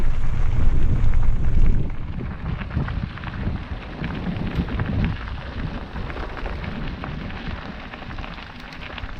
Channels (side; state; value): both; identical; correlation 1.00